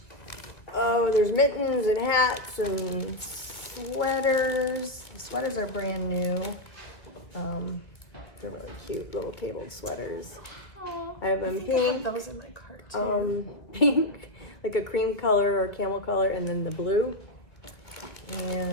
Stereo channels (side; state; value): right; late; 1.9 ms